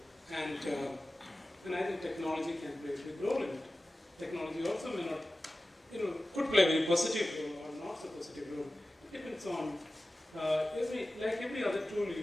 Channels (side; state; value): both; normal; correlation 0.96